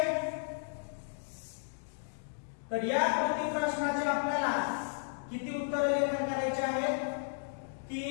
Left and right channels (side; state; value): right; silent; digital silence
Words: तर या कृती प्रश्नाचे आपल्याला किती उत्तर लेखन करायचे आहेत,